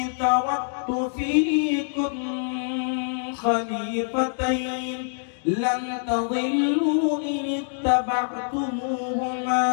তাওয়াক্তু ফীকুম খলিফাতাইন لن تضلوا إن اتبعتموهما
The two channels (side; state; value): right; silent; 62 dB below the other